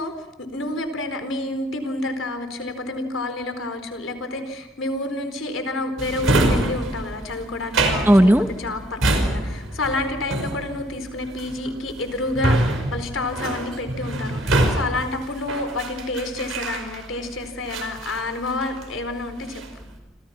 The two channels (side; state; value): both; normal; correlation 0.60